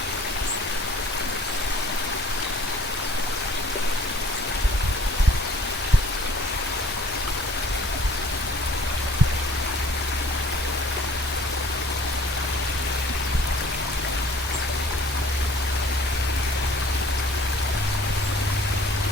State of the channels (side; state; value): both; normal; correlation 0.52